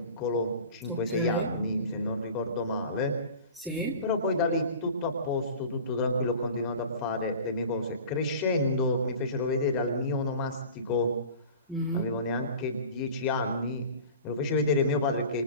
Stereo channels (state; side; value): inverted; both; correlation -0.39